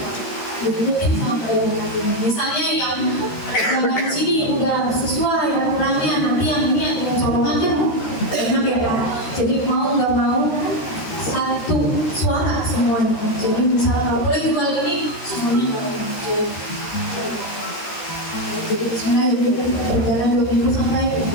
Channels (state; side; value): late; right; 13 ms